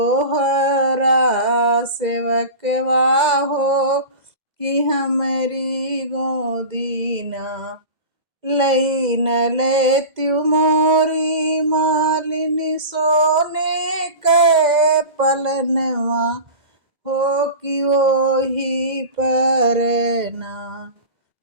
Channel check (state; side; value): late; left; 2.0 ms